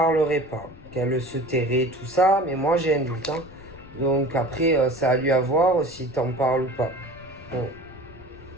pas, qu'elle se tairait, tout ça, mais moi j'ai un doute. Hein. Donc après, ça a lui à voir s'il t'en parle ou pas. Bon.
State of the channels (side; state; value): left; noise; rumble, 22 dB below the sound